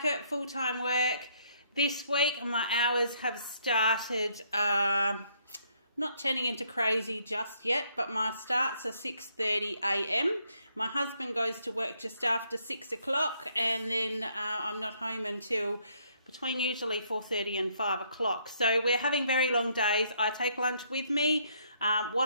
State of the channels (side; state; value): both; inverted; correlation -0.69